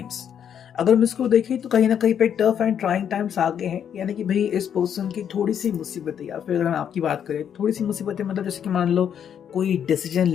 अगर हम इसको देखें तो कहीं ना कहीं पे टफ एंड ट्राइंग टाइम्स आगे हैं, यानी कि भाई इस पर्सन की थोड़ी सी मुसीबतें, या फिर अगर हम आपकी बात करें थोड़ी सी मुसीबतें, मतलब जैसे कि मान लो कोई डिसीजन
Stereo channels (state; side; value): quieter; right; 8.7 dB